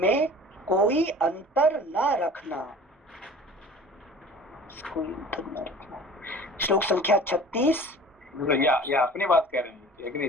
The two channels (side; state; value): both; normal; correlation 0.43